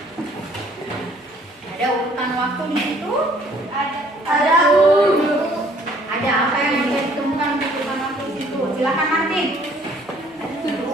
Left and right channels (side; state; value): both; normal; correlation 0.60